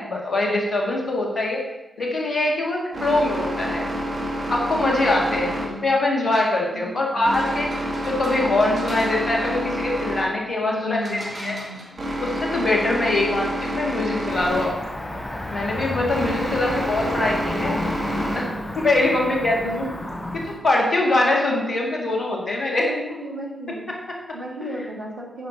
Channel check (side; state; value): both; normal; correlation 0.82